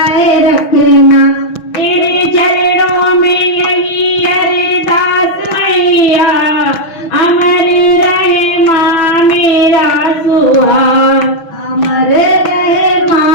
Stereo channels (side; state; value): right; late; 6.0 ms